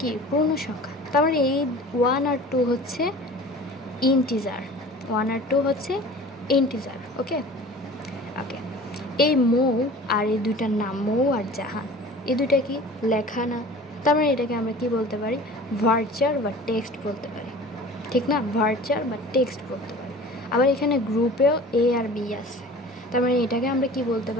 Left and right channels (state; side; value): normal; both; correlation 0.42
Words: কি পূর্ণ সংখ্যা। তার মানে এই 1 আর 2 হচ্ছে ইন্টিজার। ওকে। এই মৌ আর এই দুইটার নাম, মৌ আর জাহান, এই দুইটা কি লেখা না? তার মানে এটাকে আমরা কি বলতে পারি? ভার্চার বা টেক্সট বলতে পারি, ঠিক না? ভার্চার বা টেক্সট বলতে পারি। আবার এখানে গ্রুপেও এ আর বি আছে, তার মানে এটাকে আমরা কি বলতে